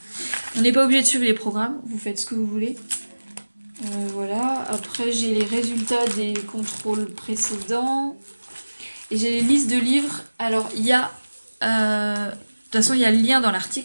on n'est pas obligé de suivre les programmes. Vous faites ce que vous voulez. Voilà. Après, j'ai les résultats des contrôles précédents. Et j'ai les listes de livres. Alors, il y a... de toute façon, il y a le lien dans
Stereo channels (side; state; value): both; inverted; correlation -1.00